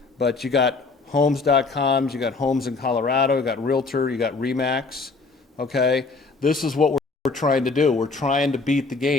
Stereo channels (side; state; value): right; quieter; 4.0 dB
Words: But you got homes.com, you got Homes in Colorado, you got Realtor, you got Remax, okay? This is what we're trying to do. We're trying to beat the